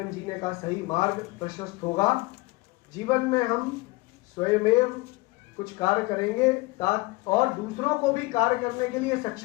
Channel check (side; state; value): right; quieter; 23.0 dB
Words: जीने का सही मार्ग प्रशस्त होगा। जीवन में हम स्वयमेव कुछ कार्य करेंगे और दूसरों को भी कार्य करने के लिए